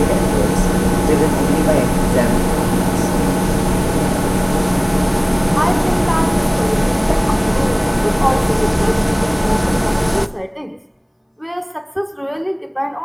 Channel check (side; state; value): both; identical; correlation 1.00